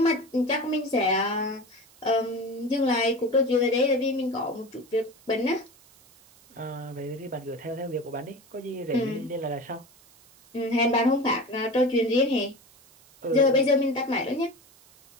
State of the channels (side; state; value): right; noise; hiss, 27 dB below the sound